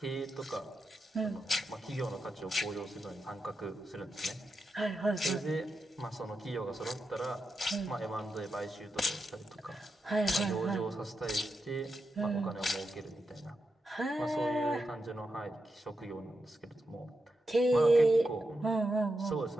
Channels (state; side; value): normal; both; correlation 0.87